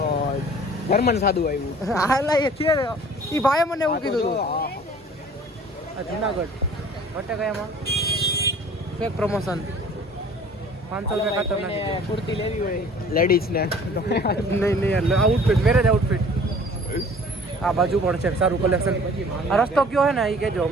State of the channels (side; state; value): both; normal; correlation 0.49